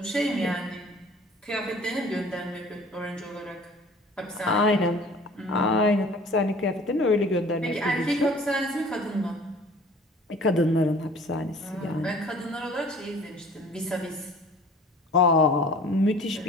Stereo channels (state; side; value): normal; both; correlation 0.48